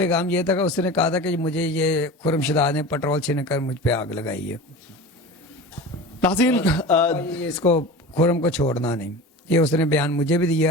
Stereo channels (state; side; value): normal; both; correlation 0.33